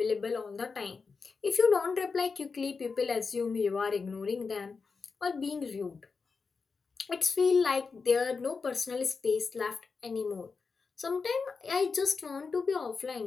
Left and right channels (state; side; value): quieter; right; 4.8 dB